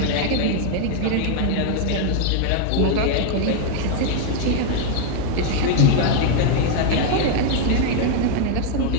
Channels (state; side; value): different; both; correlation 0.00